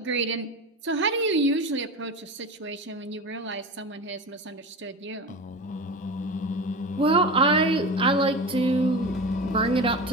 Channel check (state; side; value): normal; both; correlation 0.28